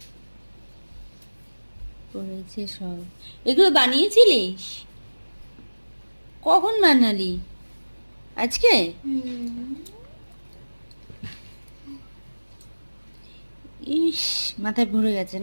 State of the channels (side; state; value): both; inverted; correlation -1.00